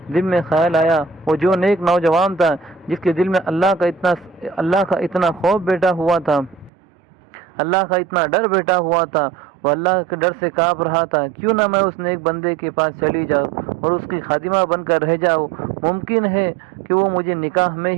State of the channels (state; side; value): drops out; left; at 6.7 s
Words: دل میں خیال آیا، وہ جو نیک نوجوان تھا جس کے دل میں اللہ کا اتنا خوف بیٹھا ہوا تھا، اللہ کا اتنا ڈر بیٹھا ہوا تھا، وہ اللہ کے ڈر سے کانپ رہا تھا، کیوں نہ میں اس نیک بندے کے پاس چلی جاؤں اور اس کی خادمہ بن کر رہ جاؤں، ممکن ہے کہ وہ مجھے نکاح میں